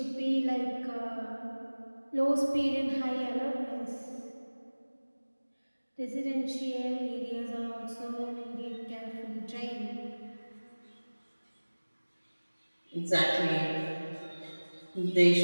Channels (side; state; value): both; inverted; correlation -1.00